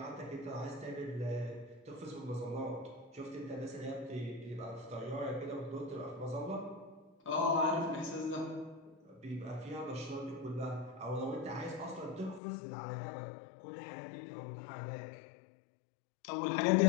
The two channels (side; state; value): right; drops out; at 12.4 s